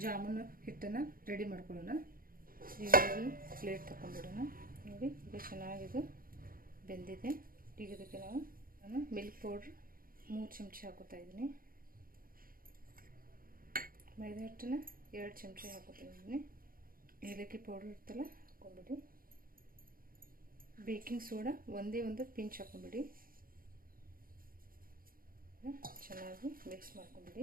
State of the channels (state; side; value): late; left; 0.42 ms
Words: ಜಾಮೂನು ಹಿಟ್ಟನ್ನು ರೆಡಿ ಮಾಡ್ಕೊಳ್ಳೋಣ. ಈಗ ಪ್ಲೇಟ್ ತಗೊಂಡ್ಬಿಡೋಣ. ನೋಡಿ, ಇದು ಚೆನ್ನಾಗಿದು ಬೆಂದಿದೆ. ಈಗ ಇದಕ್ಕೆ ನಾನು ಮಿಲ್ಕ್ ಪೌಡ್ರ್ 3 ಚಮಚ ಹಾಕೋತಾ ಇದ್ದೀನಿ. ಮೈದಾ ಹಿಟ್ಟನ್ನು 2 ಚಮಚ ಹಾಕೋತಾ ಇದ್ದೀನಿ. ಏಲಕ್ಕಿ ಪೌಡ್ರ್ ಇರ್ತಲ್ಲ, ಹಾಕೊಂಡ್ಬಿಡಿ. ಬೇಕಿಂಗ್ ಸೋಡಾ ಒಂದು ಪಿಂಚ್ ಹಾಕೊಂಡ್ಬಿಡಿ. ಚೆನ್ನಾಗಿ ಮಿಕ್ಸ್ ಮಾಡ್ಕೊಂಡ್ಬಿಡಿ.